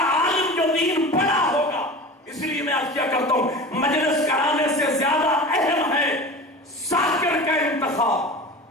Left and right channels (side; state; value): both; normal; correlation 0.34